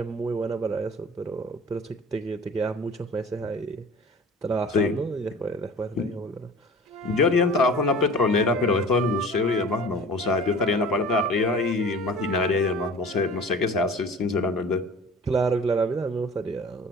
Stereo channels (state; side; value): normal; both; correlation 0.42